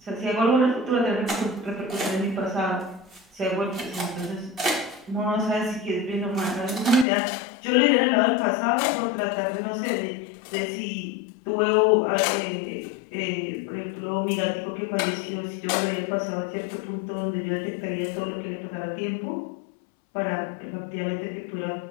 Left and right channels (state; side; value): drops out; right; at 7.1 s